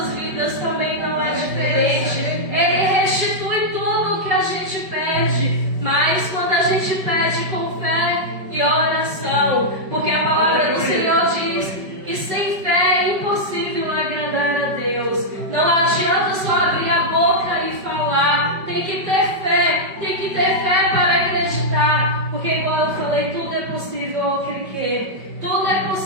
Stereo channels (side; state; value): left; late; 5.1 ms